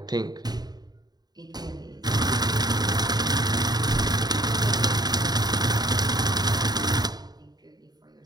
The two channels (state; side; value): late; left; 0.20 ms